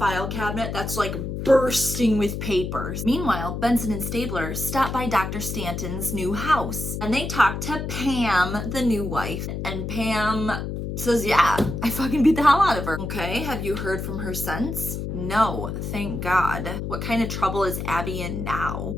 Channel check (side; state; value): left; noise; hum, 4 dB below the sound